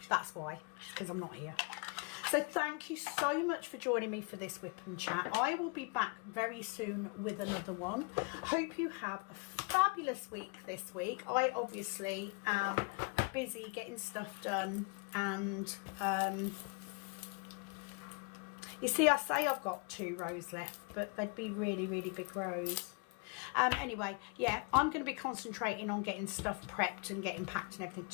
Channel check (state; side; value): quieter; right; 32.7 dB